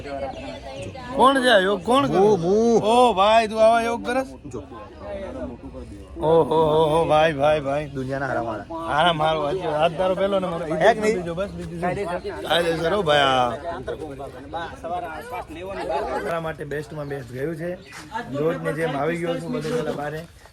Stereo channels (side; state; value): both; identical; correlation 1.00